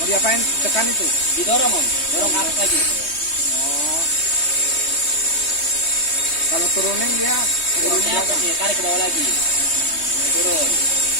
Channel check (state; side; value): late; right; 3.2 ms